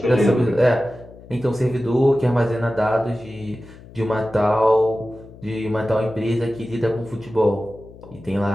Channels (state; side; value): noise; left; hum, 20 dB below the sound